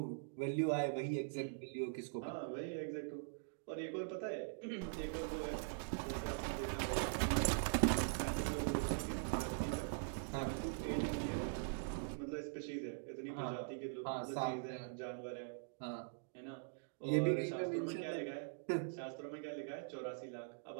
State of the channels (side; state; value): left; silent; digital silence